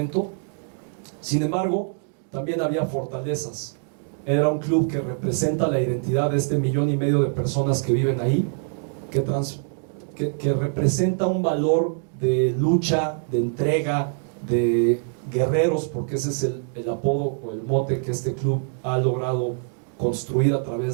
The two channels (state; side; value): silent; left; 62 dB below the other